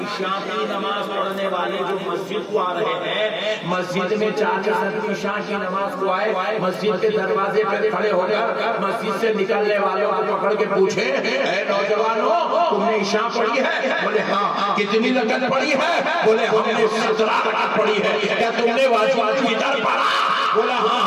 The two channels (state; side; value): identical; both; correlation 1.00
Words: عشاء کی نماز پڑھنے والے جو مسجد کو آ رہے ہیں، مسجد میں 40 آدمی عشاء کی نماز کو آئے، مسجد کے دروازے پہ کھڑے ہو کر مسجد سے نکلنے والوں کو پکڑ کے پوچھے، اے نوجوانوں تم نے عشاء پڑھی ہے؟ بولے ہاں۔ کتنی رکعت پڑھی ہے؟ بولے ہم نے 17 رکعت پڑھی ہے۔ کیا تم نے واجب الفطر پڑھا؟ بولا ہاں